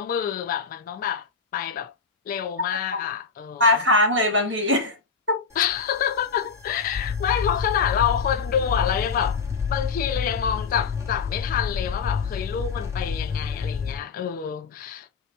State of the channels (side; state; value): right; quieter; 5.2 dB